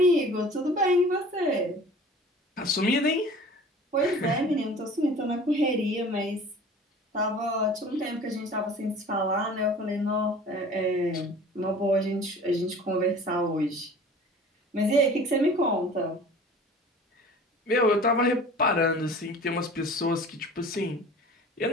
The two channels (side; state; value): both; normal; correlation 0.44